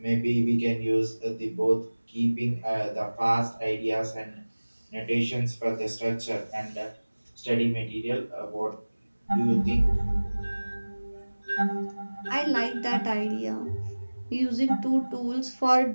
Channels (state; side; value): inverted; both; correlation -1.00